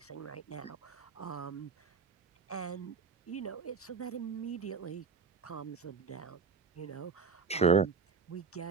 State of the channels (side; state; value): left; quieter; 5.3 dB